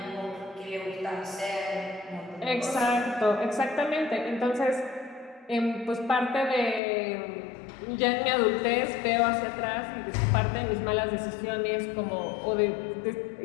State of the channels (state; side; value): drops out; right; at 6.8 s